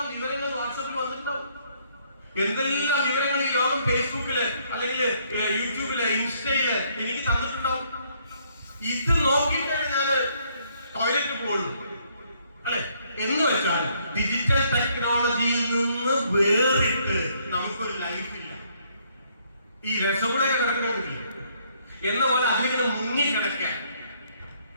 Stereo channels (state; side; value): inverted; both; correlation -0.68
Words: വിവരങ്ങൾ വാട്സാപ്പിൽ വന്നിട്ടുണ്ടാവും, എന്തെല്ലാം വിവരങ്ങൾ ഈ ലോകം ഫേസ്ബുക്കില് അല്ലെങ്കിൽ യൂട്യൂബില് ഇൻസ്റ്റയില് എനിക്ക് തന്നിട്ടുണ്ടാവും. ഇത് നോക്കിയിട്ടാണ് ഞാൻ ടോയ്ലറ്റ് പോകുള്ളൂ, അല്ലെ. എന്ന് വെച്ചാൽ ഡിജിറ്റൽ ടെക്നോളജിയിൽ നിന്ന് വേറിട്ട് നമുക്കൊരു ലൈഫില്ല. ഈ രസഗുളയൊക്കെ കിടക്കണമെങ്കിൽ എന്ന പോലെ അതിലിങ്ങനെ മുങ്ങിക്കിടക്കാൻ.